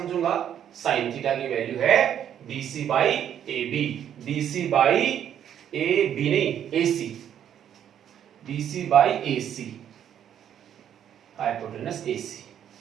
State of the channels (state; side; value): quieter; left; 9.7 dB